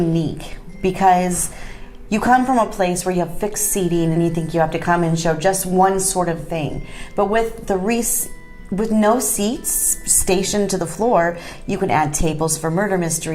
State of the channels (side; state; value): both; identical; correlation 1.00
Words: because you come from a place where you have fixed seating and you think you have to come and show just one sort of thing. But with the REES, with no seats stationed to the floor, you can add tables for murder